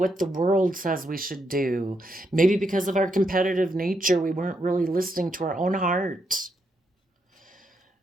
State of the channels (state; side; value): normal; both; correlation 0.80